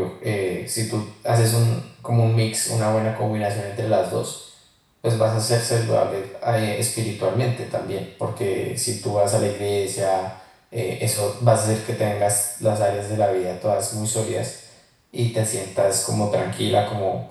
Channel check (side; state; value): both; identical; correlation 1.00